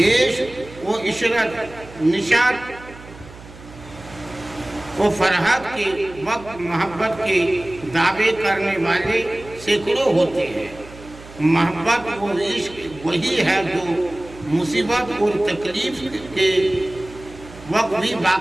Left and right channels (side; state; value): right; noise; hum, 18 dB below the sound